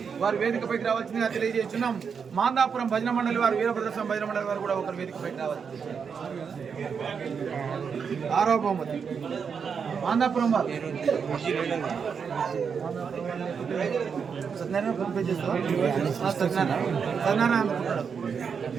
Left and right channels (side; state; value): left; quieter; 6.3 dB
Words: వారు వేదికపైకి రావాల్సిందిగా తెలియజేస్తున్నాం. మాందాపురం భజన మండలి వారు, వీరభద్ర స్వామి భజన మండలి వారు కూడా ఒకరు వేదికపైకి రావాలి. 6వ బహుమతి మాందాపురం వారు సత్యనారాయణ ఫోన్ చేస్తాం. సత్యనారాయణ